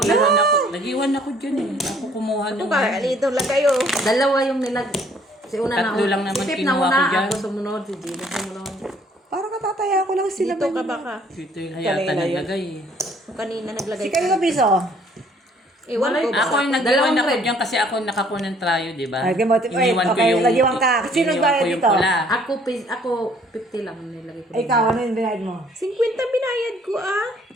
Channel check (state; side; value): normal; both; correlation 0.60